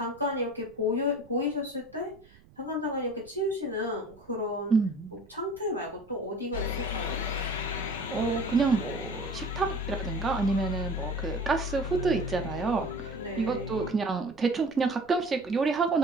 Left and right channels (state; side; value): noise; right; rumble, 26 dB below the sound